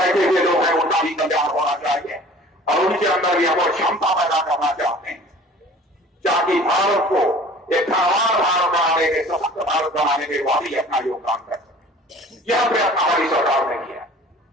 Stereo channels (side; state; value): both; normal; correlation 0.47